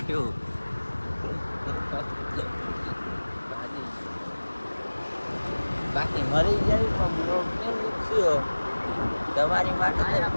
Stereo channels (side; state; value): both; inverted; correlation -1.00